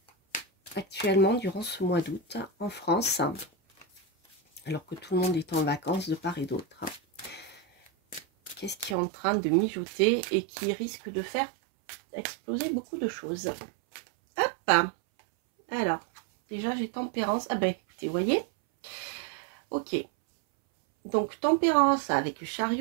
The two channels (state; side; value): drops out; left; at 9.0 s